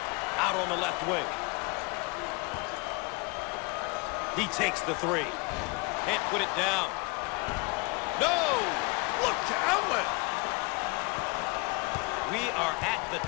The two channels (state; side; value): quieter; right; 29.0 dB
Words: Out on the left wing. He takes the 3. Can't put it down. No! Look to outlet. We are at the